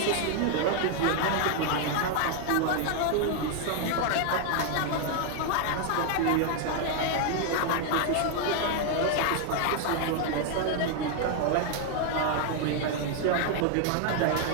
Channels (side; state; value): both; different; correlation 0.00